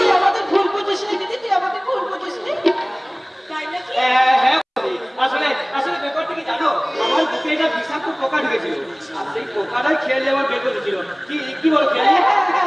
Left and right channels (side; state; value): both; identical; correlation 1.00